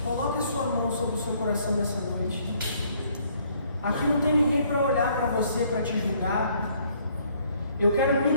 coloque a sua mão sobre o seu coração nessa noite. Aqui não tem ninguém para olhar para você, para te julgar. Eu quero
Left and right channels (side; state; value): both; inverted; correlation -0.64